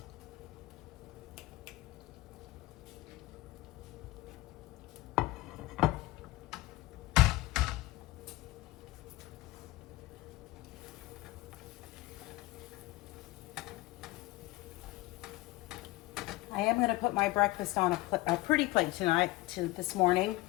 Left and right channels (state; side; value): quieter; right; 19.0 dB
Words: I am going to put my breakfast on a pretty plate this morning.